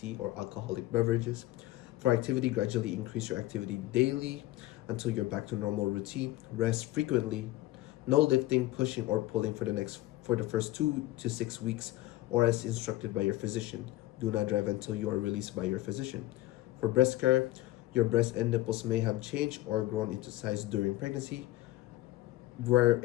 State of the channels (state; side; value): quieter; right; 16.8 dB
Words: or alcoholic beverages. For activity, gradually increase your activity daily until you're back to normal routine. Rest frequently. No lifting, pushing, or pulling for the first 2 to 6 weeks, or as instructed by your physician. Do not drive until you are released by your physician. For breast care, your breast and nipples may have changed or grown into size during pregnancy. Wear